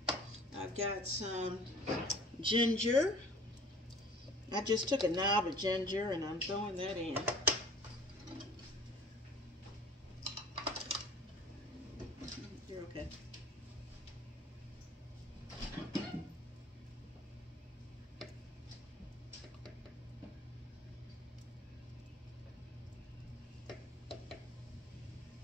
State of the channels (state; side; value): normal; both; correlation 0.48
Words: I've got some ginger. I just took a knob of ginger and I'm throwing that in. You're okay.